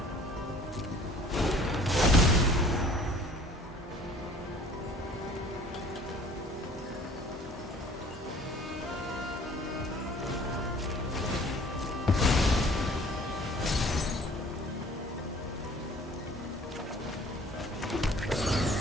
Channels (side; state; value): both; normal; correlation 0.51